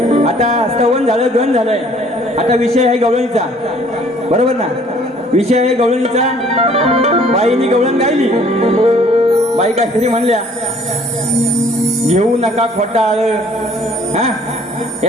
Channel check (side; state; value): both; normal; correlation 0.58